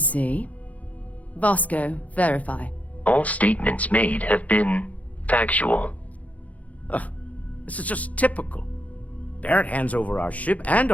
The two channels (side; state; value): right; late; 0.071 ms